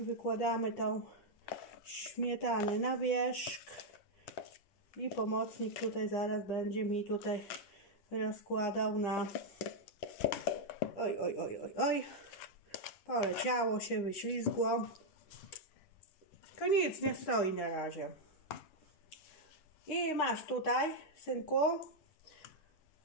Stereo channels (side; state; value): right; late; 10 ms